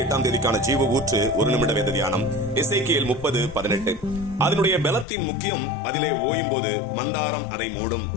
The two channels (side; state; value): right; drops out; at 5.1 s